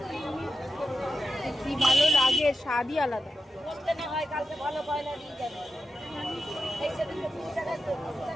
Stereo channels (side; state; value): both; normal; correlation 0.89